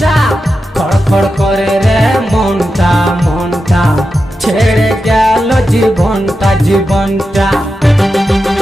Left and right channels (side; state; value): both; normal; correlation 0.90